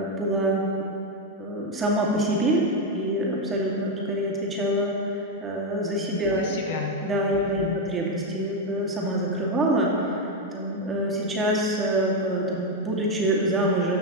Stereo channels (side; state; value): both; normal; correlation 0.05